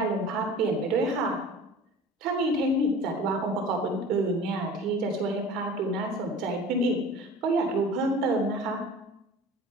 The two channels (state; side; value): normal; both; correlation 0.41